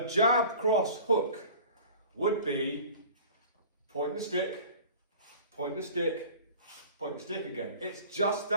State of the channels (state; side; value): inverted; both; correlation -0.43